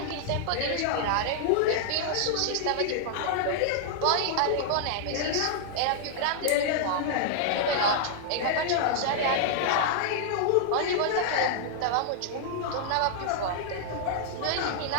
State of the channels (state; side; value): different; both; correlation -0.01